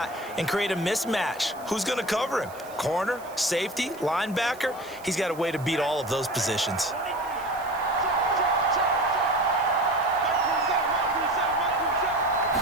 and create a mismatch. Who's going to cover him? Corner, safety, linebacker? He's got a way to beat all of those positions.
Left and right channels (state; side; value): noise; right; hiss, 21 dB below the sound